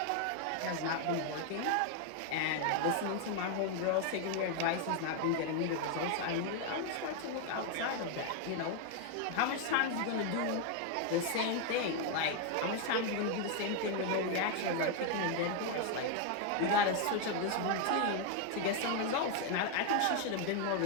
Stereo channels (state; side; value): different; both; correlation 0.01